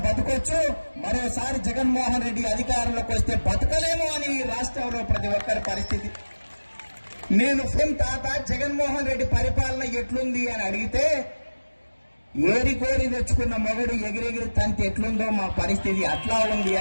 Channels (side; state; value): both; inverted; correlation -1.00